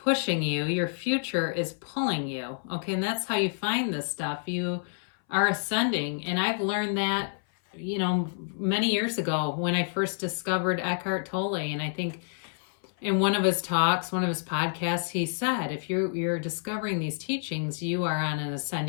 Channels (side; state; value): right; silent; 59 dB below the other